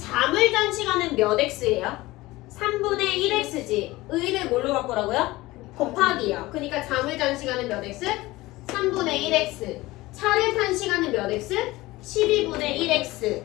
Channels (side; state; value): right; quieter; 19.3 dB